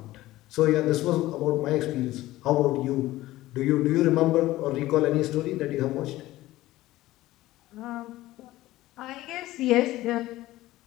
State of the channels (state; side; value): quieter; right; 16.6 dB